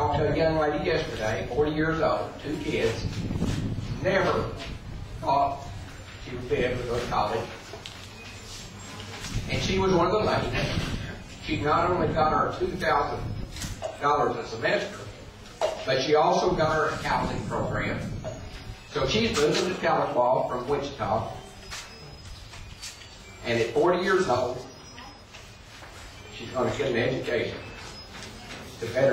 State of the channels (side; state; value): both; identical; correlation 1.00